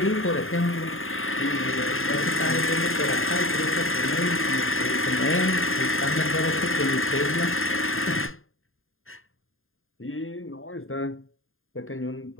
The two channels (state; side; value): late; right; 0.60 ms